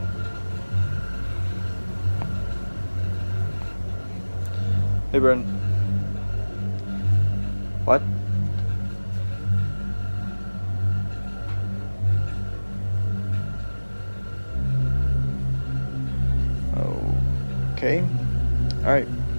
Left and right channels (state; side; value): inverted; both; correlation -1.00